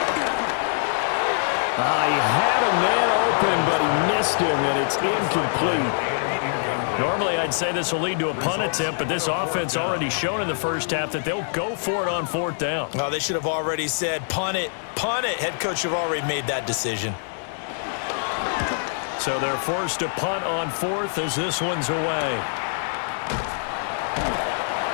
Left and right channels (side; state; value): right; silent; 62 dB below the other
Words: He had a man open, but he missed him, and it's incomplete. Normally, I'd say this will lead to a punt attempt, but this offense already shown in the first half that they'll go for it on 4th down. Oh, they should have already said, punt it, punt it. Head coach have already made that decision. So they're forced to punt on 4th as this one's away.